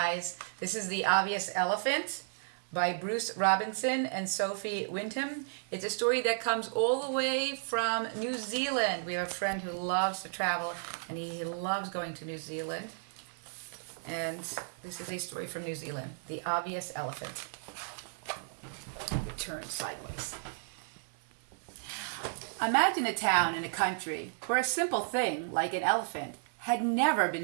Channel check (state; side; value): silent; left; 55 dB below the other